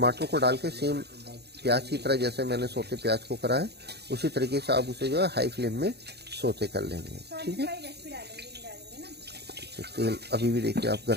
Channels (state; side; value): late; left; 0.48 ms